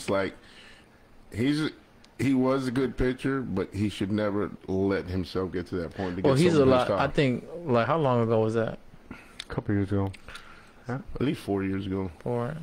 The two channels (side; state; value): both; identical; correlation 1.00